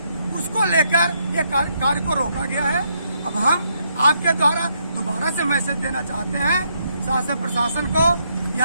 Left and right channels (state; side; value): inverted; both; correlation -0.75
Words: उसको लेकर ये कार्य को रोका गया है। अब हम आपके द्वारा दोबारा से मैसेज देना चाहते हैं शासन प्रशासन को,